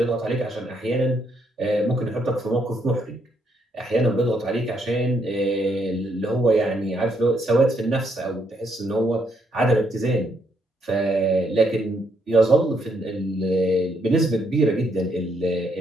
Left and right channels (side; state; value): both; normal; correlation 0.74